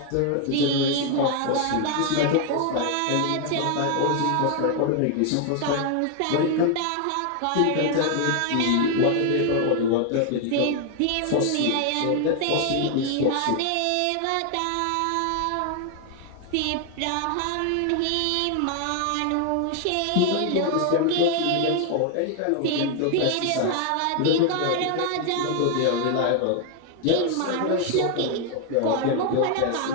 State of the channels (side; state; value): both; different; correlation 0.00